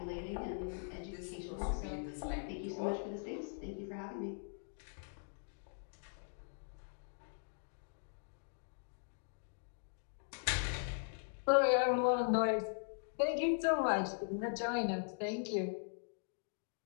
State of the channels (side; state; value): right; silent; digital silence